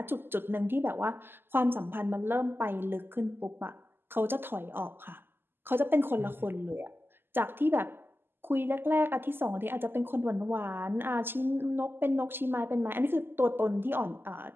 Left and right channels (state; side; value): late; left; 0.10 ms